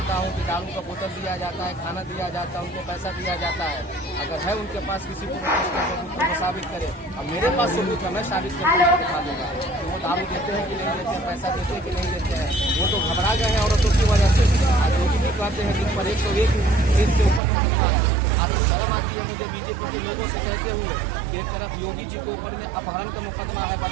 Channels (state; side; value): drops out; left; at 17.4 s